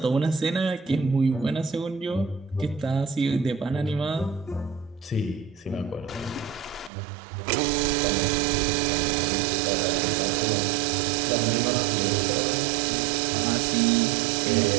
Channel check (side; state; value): left; drops out; at 6.9 s